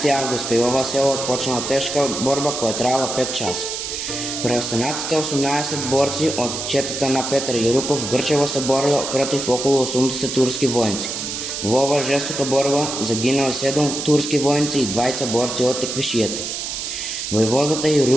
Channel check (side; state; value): right; noise; hiss, 5 dB below the sound